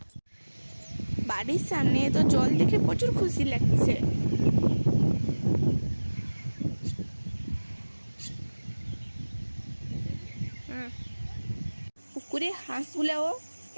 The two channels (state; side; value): inverted; both; correlation -1.00